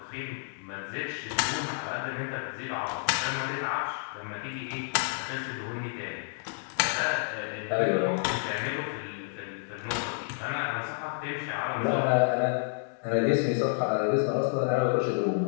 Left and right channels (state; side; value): silent; right; digital silence